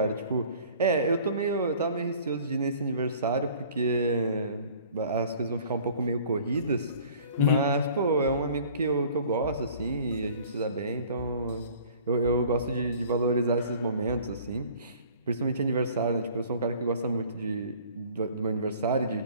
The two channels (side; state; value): both; inverted; correlation -0.50